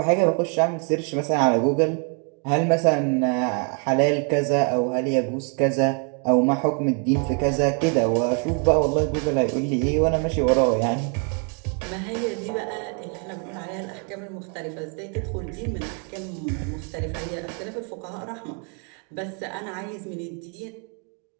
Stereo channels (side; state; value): left; quieter; 38.7 dB